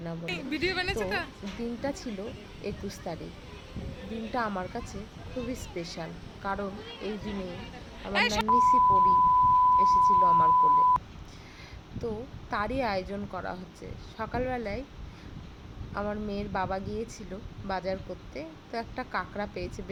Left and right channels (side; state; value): both; identical; correlation 1.00